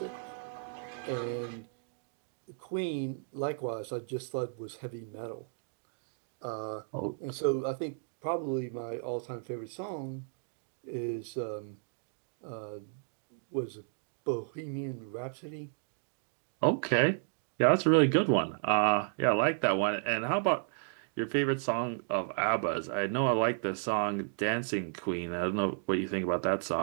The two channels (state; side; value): silent; left; digital silence